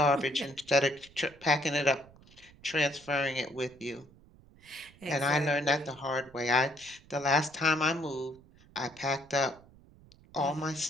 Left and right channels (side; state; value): right; noise; rumble, 25 dB below the sound